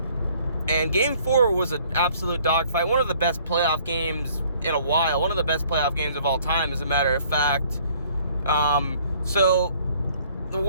And Game 4 was an absolute dogfight. One of the best playoff games in a while. One of the best playoff games of all time, as a matter of fact. So the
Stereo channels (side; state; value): both; inverted; correlation -0.59